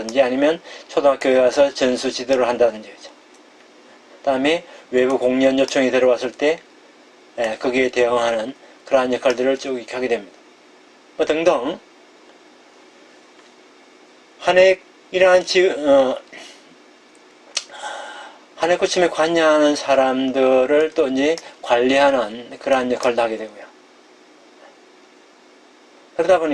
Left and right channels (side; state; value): both; identical; correlation 1.00